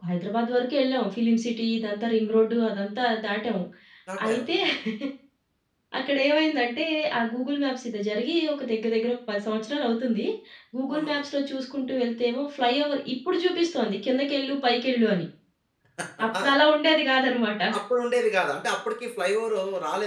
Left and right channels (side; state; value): both; identical; correlation 1.00